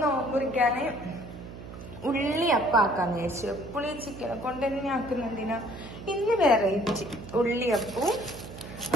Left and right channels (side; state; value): right; noise; hum, 13 dB below the sound